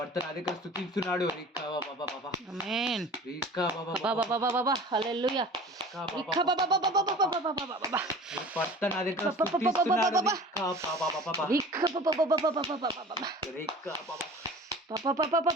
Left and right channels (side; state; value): both; normal; correlation 0.41